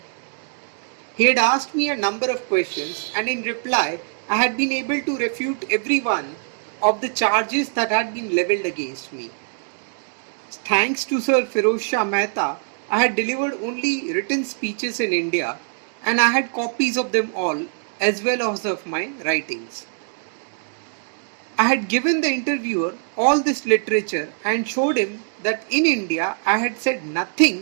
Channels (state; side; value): silent; left; 64 dB below the other